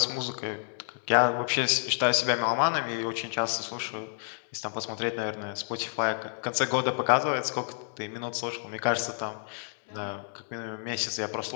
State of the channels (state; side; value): silent; right; 58 dB below the other